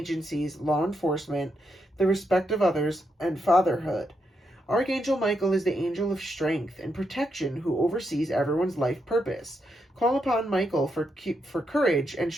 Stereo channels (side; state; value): both; normal; correlation 0.81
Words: law enforcement, the respect of others, and fatherhood. Archangel Michael is the angel of strength and protection who oversees everyone's life purpose. Call upon Michael for courage and